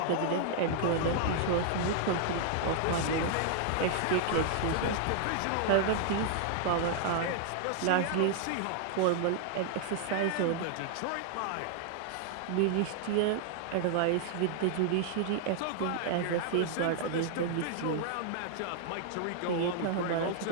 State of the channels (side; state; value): both; different; correlation -0.01